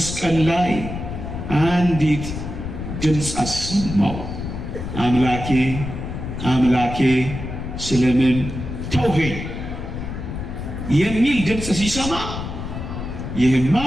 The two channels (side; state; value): left; noise; rumble, 7 dB below the sound